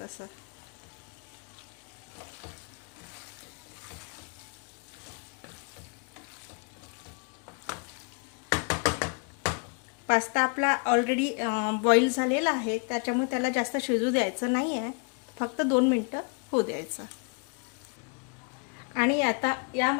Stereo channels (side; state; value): right; quieter; 35.6 dB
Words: असं. पास्ता आपला ऑलरेडी बॉईल झालेला आहे, त्याच्यामुळे त्याला जास्त शिजू द्यायचं नाही आहे. फक्त 2 मिनिटं होऊ द्यायचं. आणि आता